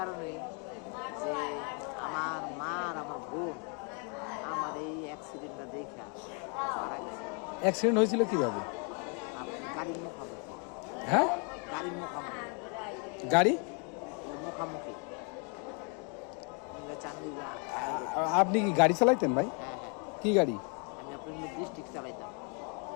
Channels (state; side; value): quieter; right; 37.3 dB